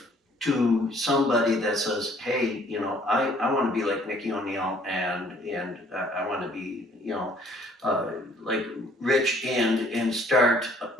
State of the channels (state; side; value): normal; both; correlation 0.60